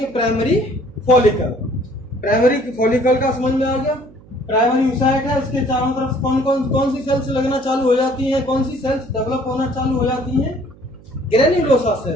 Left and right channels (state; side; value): noise; right; hum, 24 dB below the sound